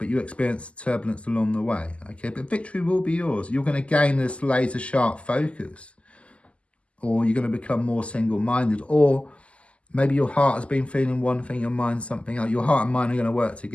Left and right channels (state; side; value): late; right; 0.059 ms